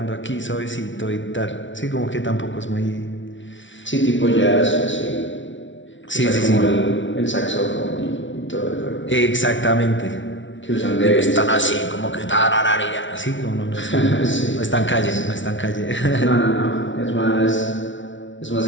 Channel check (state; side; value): late; right; 0.56 ms